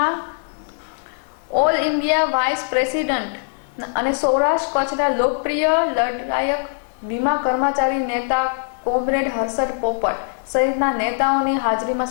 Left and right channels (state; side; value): silent; right; digital silence